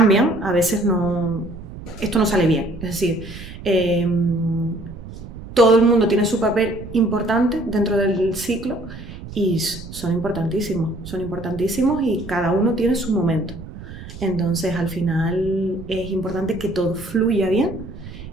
a veces esto no sale bien. Es decir, todo el mundo tiene su papel importante dentro del ciclo y son importantísimos y cada uno tiene su momento. Entonces, al final es importante que todo fluya bien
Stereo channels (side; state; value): right; noise; rumble, 13 dB below the sound